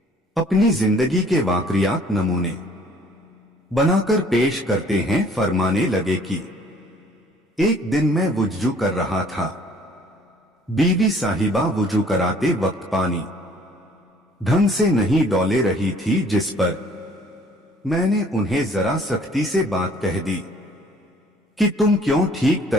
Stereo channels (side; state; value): both; normal; correlation 0.57